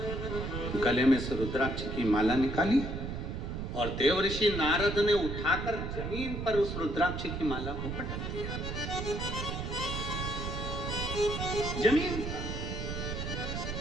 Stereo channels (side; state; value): right; noise; rumble, 4 dB below the sound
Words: गले में से रुद्राक्ष की माला निकाली और देव ऋषि नारद ने उठाकर जमीन पर उस रुद्राक्ष की माला को पटक दिया। जमीन।